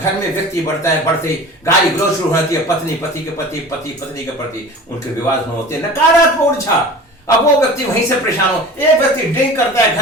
में व्यक्ति बढ़ता है, बढ़ते ही गाली गलौज शुरू होती है, पत्नी पति के प्रति, पति पत्नी के प्रति, उनके विवाद होते हैं, नकारात्मक ऊर्जा। अब वो व्यक्ति वहीं से परेशान हो, एक व्यक्ति ड्रिंक करता है,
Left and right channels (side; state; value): both; normal; correlation 0.38